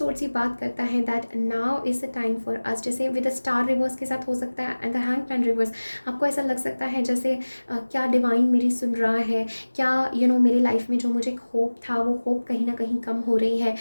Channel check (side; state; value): both; inverted; correlation -1.00